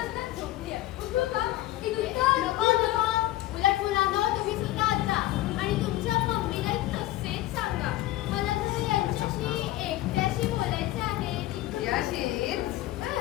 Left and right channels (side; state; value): right; quieter; 15.7 dB